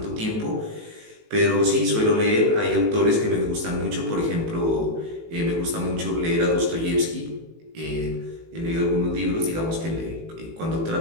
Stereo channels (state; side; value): late; left; 18 ms